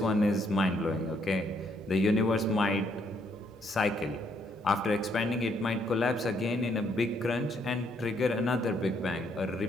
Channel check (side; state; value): both; normal; correlation 0.71